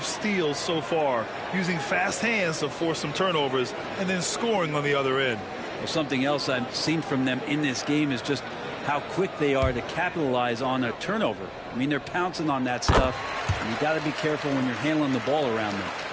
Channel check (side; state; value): both; identical; correlation 1.00